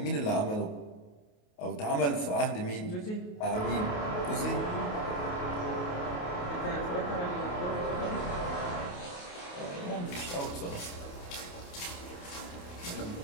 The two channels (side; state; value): right; late; 28 ms